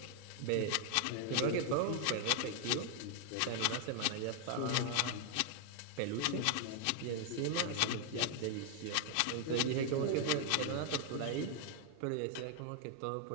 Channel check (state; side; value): different; both; correlation 0.00